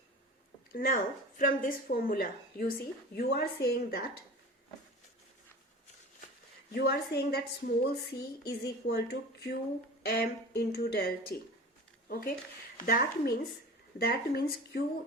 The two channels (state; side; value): normal; both; correlation 0.37